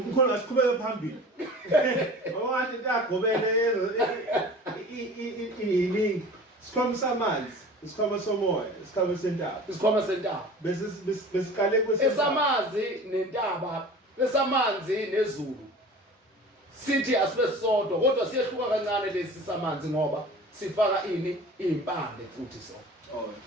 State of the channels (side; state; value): both; normal; correlation 0.40